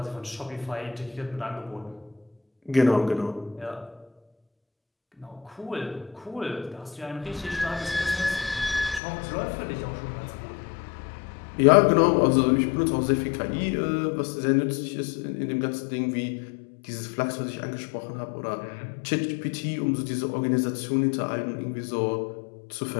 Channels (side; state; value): right; drops out; at 9.0 s